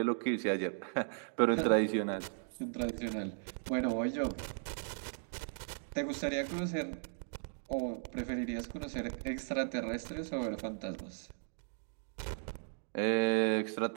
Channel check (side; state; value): left; silent; digital silence